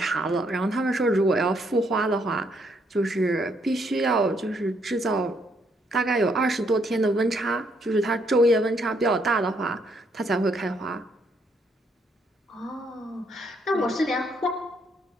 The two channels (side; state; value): both; normal; correlation 0.72